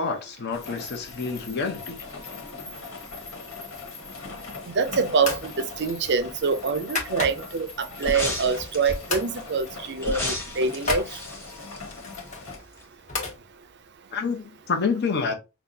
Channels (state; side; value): normal; both; correlation -0.16